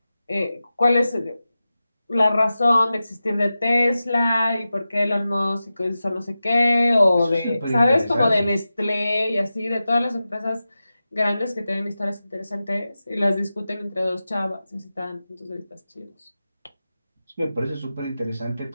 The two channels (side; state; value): both; inverted; correlation -0.93